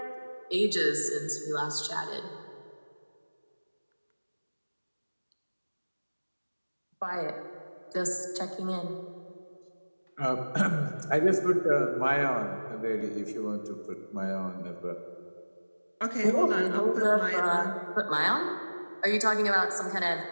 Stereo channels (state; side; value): inverted; both; correlation -1.00